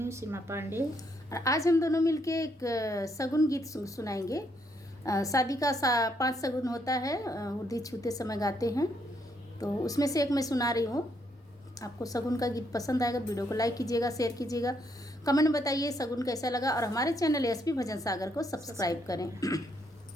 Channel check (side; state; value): both; normal; correlation 0.74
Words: हूँ सीमा पांडे। और आज हम दोनों मिलके एक सगुन गीत सुनाएंगे। शादी का 5 सगुन होता है, उर्दी छूते समय गाते हैं, तो उसमें से एक मैं सुना रही हूँ। आपको सगुन का गीत पसंद आएगा, वीडियो को लाइक कीजिएगा, शेयर कीजिएगा, कमेंट में बताइए सगुन कैसा लगा, और हमारे चैनल एसपी भजन सागर को सब्सक्राइब करें।